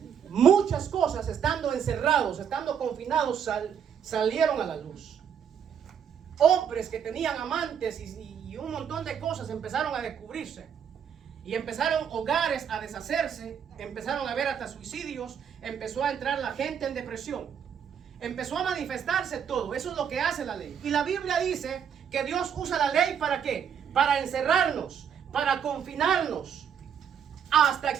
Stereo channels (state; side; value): quieter; left; 8.0 dB